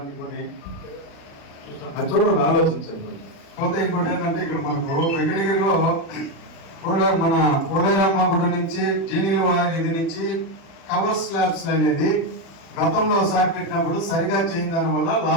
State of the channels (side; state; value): right; late; 36 ms